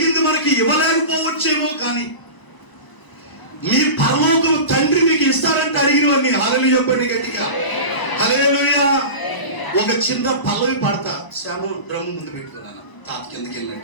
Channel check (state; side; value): late; right; 1.0 ms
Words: మనకి ఇవ్వలేకపోవచ్చేమో, కానీ మీ పరలోకం తండ్రి మీకు ఇస్తారంటే అడిగినవన్నీ. హల్లెలూయా చెప్పండి గట్టిగా. హల్లెలూయా. ఒక చిన్న పల్లవి పాడతా. శ్యాము డ్రమ్ ముందు పెట్టుకున్నాను, తాత కిందకి